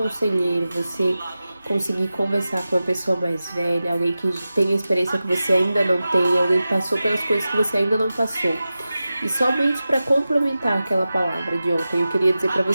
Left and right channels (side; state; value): both; inverted; correlation -0.94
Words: você conseguir conversar com uma pessoa mais velha, alguém que tem experiência que você ainda não tem, alguém que passou pelas coisas que você ainda não passou. E somente para complementar aquela palavra de ontem, eu queria dizer para